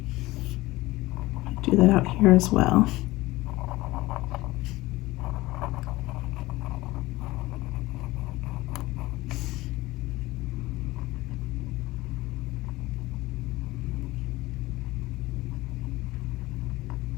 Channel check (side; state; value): right; quieter; 19.2 dB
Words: Do that out here as well.